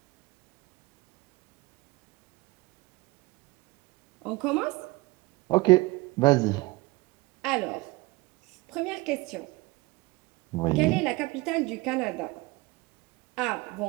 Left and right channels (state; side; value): quieter; left; 22.3 dB